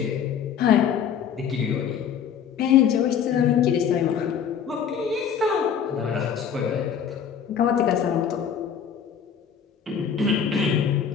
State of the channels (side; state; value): right; quieter; 7.9 dB